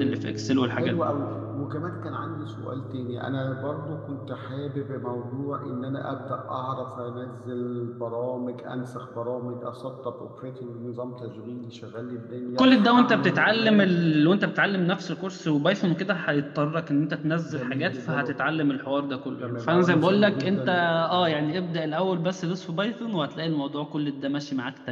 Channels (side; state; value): both; identical; correlation 1.00